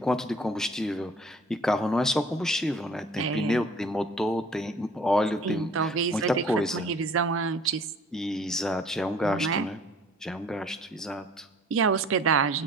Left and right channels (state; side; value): normal; both; correlation 0.51